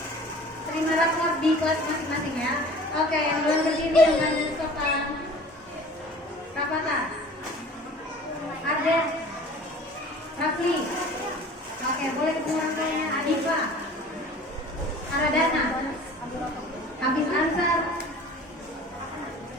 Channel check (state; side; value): normal; both; correlation 0.45